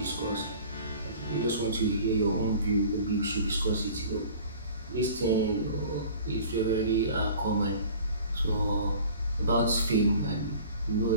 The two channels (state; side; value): inverted; both; correlation -0.45